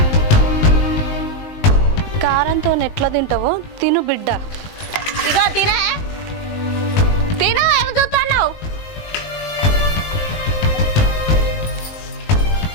కారంతో ఎట్లా తింటావో తిను బిడ్డ. ఇగో తినే తిను. ఏమి చూస్తున్నావు?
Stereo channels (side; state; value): right; late; 19 ms